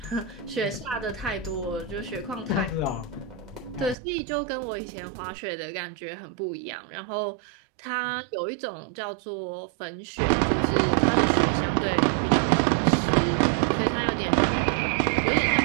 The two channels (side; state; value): left; drops out; at 4.0 s